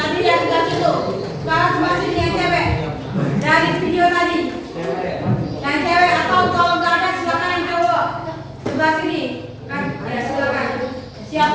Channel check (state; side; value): identical; both; correlation 1.00